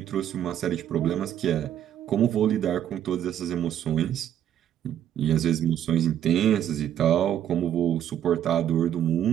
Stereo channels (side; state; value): left; quieter; 10.5 dB